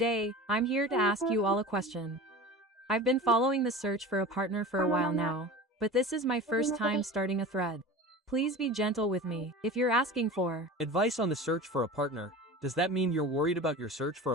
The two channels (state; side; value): normal; both; correlation 0.34